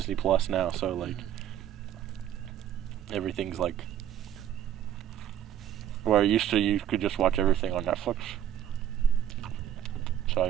Plus now, so like everything's like where used to you could just watch everything on Netflix.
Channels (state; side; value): quieter; left; 10.7 dB